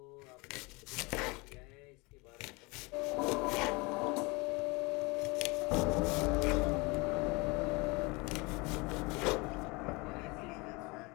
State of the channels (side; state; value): right; quieter; 26.4 dB